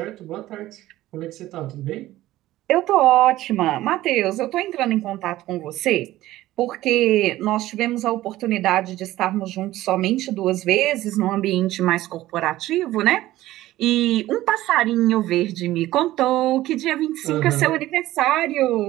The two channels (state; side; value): quieter; left; 15.7 dB